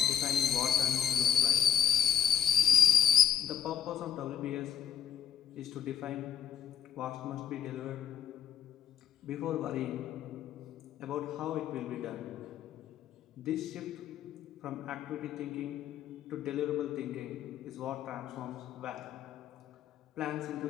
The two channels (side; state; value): right; quieter; 9.1 dB